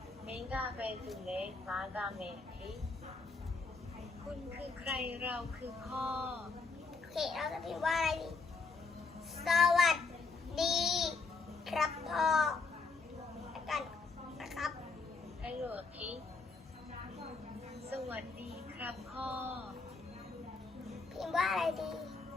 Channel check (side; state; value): right; quieter; 4.2 dB